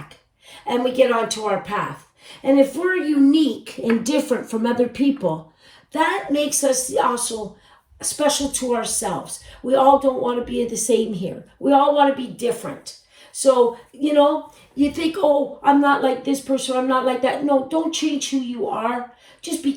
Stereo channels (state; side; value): identical; both; correlation 1.00